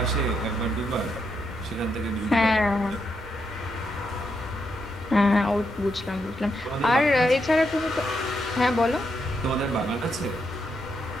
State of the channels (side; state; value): both; normal; correlation 0.80